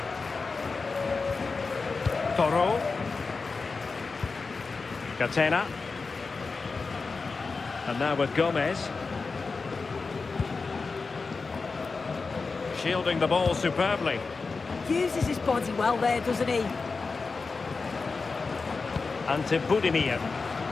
Toro. Catena. And now with Gomez. Shielding the ball superbly. Uses his body well there, doesn't he? And to Budimir.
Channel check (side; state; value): right; quieter; 4.3 dB